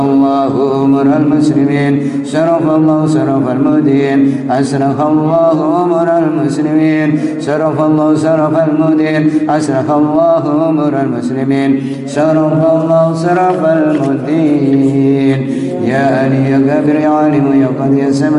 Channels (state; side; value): identical; both; correlation 1.00